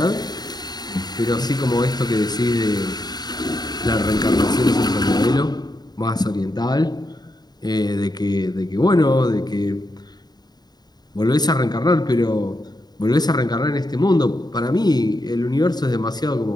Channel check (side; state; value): right; late; 0.20 ms